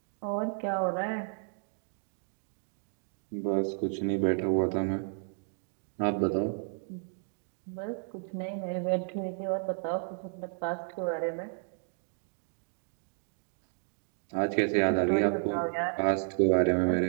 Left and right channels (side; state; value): left; silent; digital silence